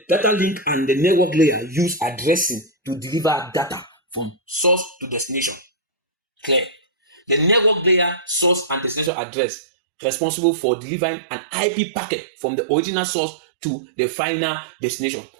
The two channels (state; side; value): drops out; left; at 9.1 s